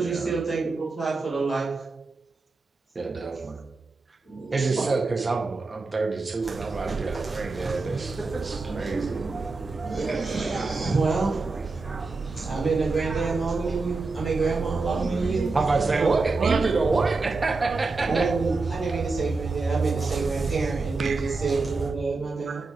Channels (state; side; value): quieter; left; 3.8 dB